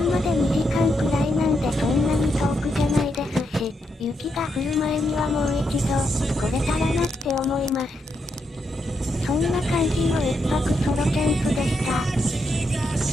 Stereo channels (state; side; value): normal; both; correlation 0.80